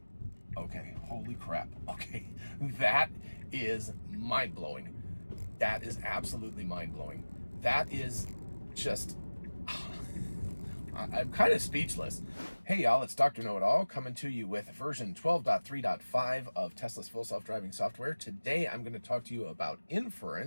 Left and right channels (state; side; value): inverted; both; correlation -1.00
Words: Okay, holy crap. Okay, that is mind-blowing. That is absolutely mind-blowing. That is just, I'm kind of speechless. Hey y'all, it's Dr. Know-It-All coming to you with version 12.3.5 of Tesla's full self-driving software. Today I'm going to talk to you about